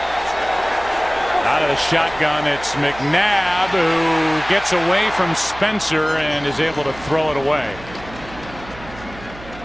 Out of the shotgun, it's McNabb, who gets away from Spencer and is able to throw it away.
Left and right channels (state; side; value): noise; right; hum, 17 dB below the sound